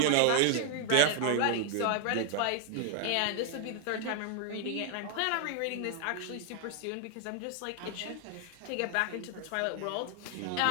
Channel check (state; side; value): different; both; correlation 0.00